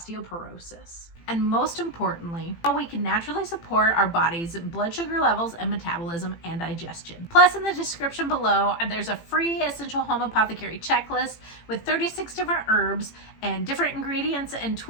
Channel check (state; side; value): late; right; 18 ms